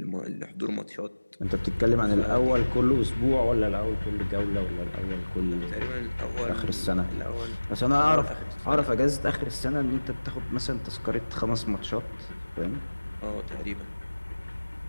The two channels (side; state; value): both; inverted; correlation -1.00